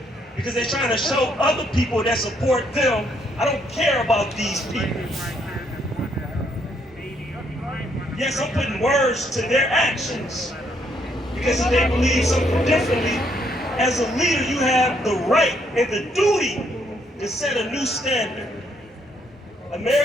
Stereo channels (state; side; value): normal; both; correlation 0.71